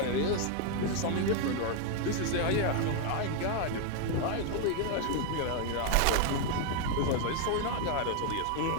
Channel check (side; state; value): both; different; correlation 0.01